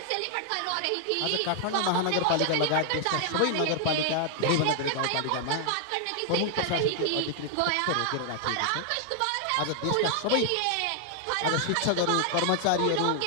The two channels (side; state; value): both; different; correlation 0.00